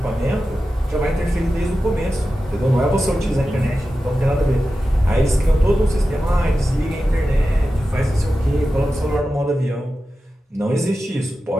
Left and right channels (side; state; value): both; normal; correlation 0.93